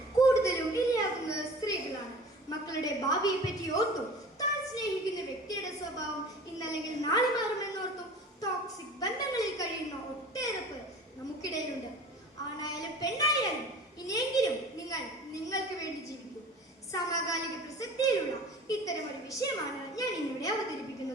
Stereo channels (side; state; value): both; normal; correlation 0.41